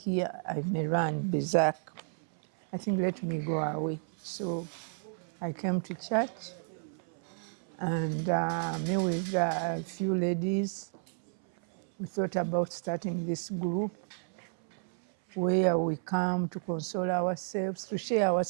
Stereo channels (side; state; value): left; silent; 57 dB below the other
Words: I may run berserk. I think let me go away. So I came to church and me with a few ladies, we thought about starting this group where we come to console ourselves, to share our